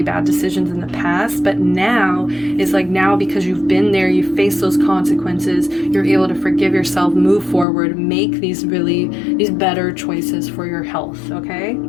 bad decisions in the past, but now it's like, now because you've been there, you face those consequences, you're able to forgive yourself, move forward, make these better choices for your health. Okay.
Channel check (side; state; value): right; drops out; at 7.7 s